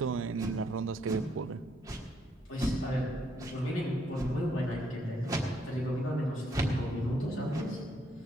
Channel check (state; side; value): normal; both; correlation 0.73